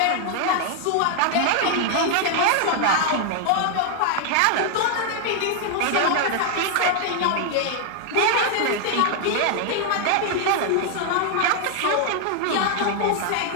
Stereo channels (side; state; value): both; different; correlation 0.00